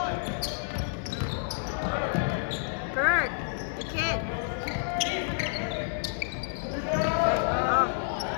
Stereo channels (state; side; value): silent; right; 58 dB below the other